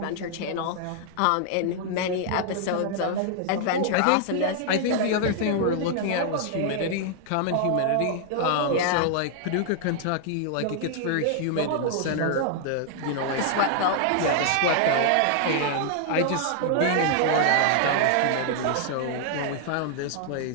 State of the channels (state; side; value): different; both; correlation 0.00